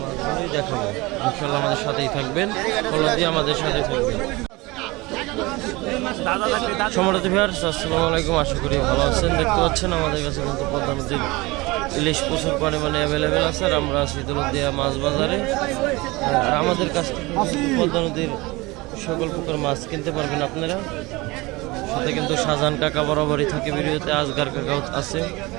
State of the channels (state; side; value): quieter; left; 22.7 dB